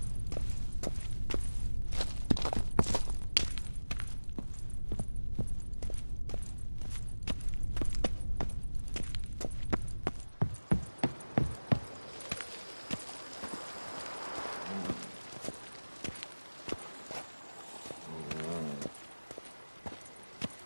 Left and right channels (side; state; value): both; inverted; correlation -1.00